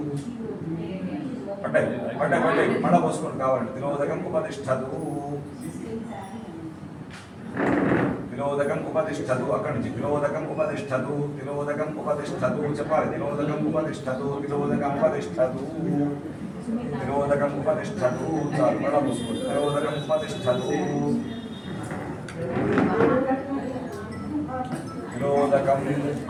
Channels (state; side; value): identical; both; correlation 1.00